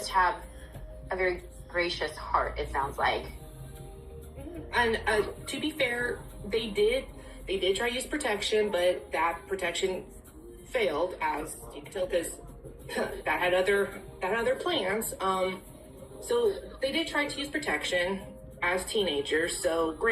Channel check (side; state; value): both; identical; correlation 1.00